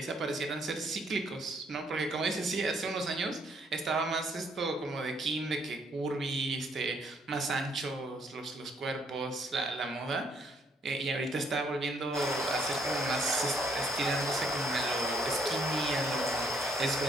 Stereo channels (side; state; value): both; normal; correlation 0.68